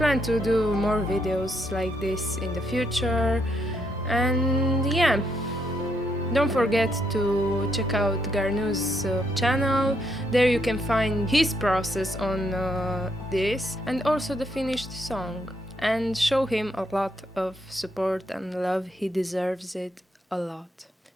to do more videos like this in the future, and yeah, don't forget to check out Garnu's channel. There you can find his process on this, and also the finished song, and show him a lot of support and love. He deserves it a lot.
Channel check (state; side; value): normal; both; correlation 0.75